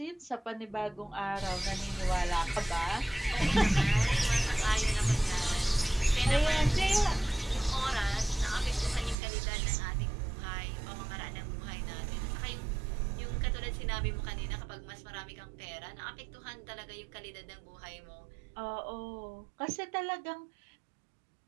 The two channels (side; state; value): left; drops out; at 9.2 s